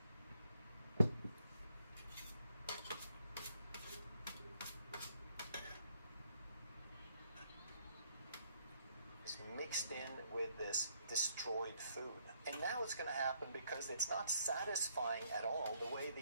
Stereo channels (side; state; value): both; inverted; correlation -0.70